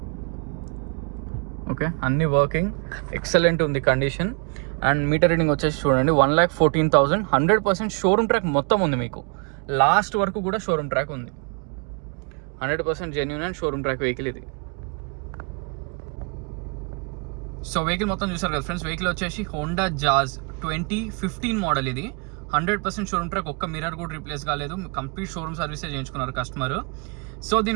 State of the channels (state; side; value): quieter; left; 34.7 dB